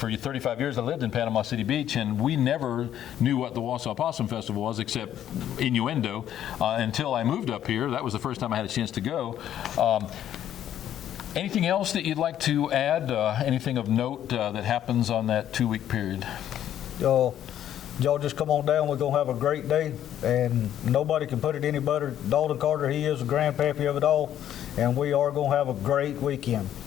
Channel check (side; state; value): right; quieter; 11.0 dB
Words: 35 years, I lived in Panama City Beach, and we never knew what the Wausau Possum Festival was except innuendo until I moved up here. That was the first time I had a chance to go. Anything else that you'd like to add? Anything of note that happens on that 2-week period? Y'all just come on down. We're going to have a great day, and nobody can put it any better. Dalton Carter, he is the grandpappy of it all, and we are going to have a great weekend.